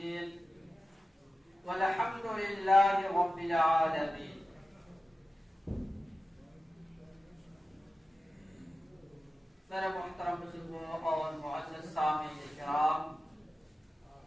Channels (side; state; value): both; normal; correlation 0.94